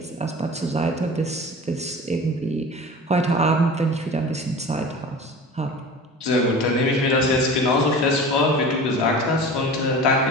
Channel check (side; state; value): both; normal; correlation 0.36